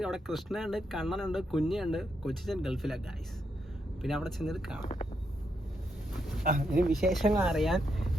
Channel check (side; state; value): both; normal; correlation 0.80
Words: അവിടെ കൃഷ്ണയുണ്ട്, കണ്ണനുണ്ട്, കുഞ്ഞുണ്ട്. കൊച്ചിച്ചൻ ഗൾഫിലാണ് ഗൈസ്. പിന്നെ അവിടെ ചെന്നിട്ട് കാണാം. ഇനി വിശേഷങ്ങൾ അറിയാൻ